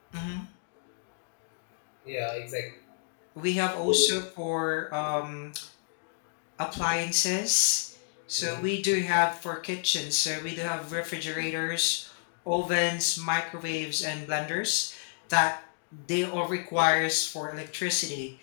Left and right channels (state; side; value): silent; right; digital silence